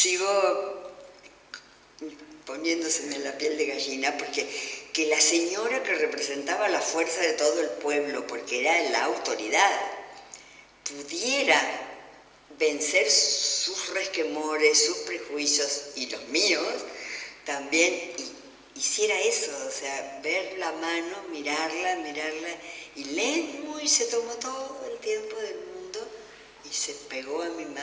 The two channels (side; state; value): both; identical; correlation 1.00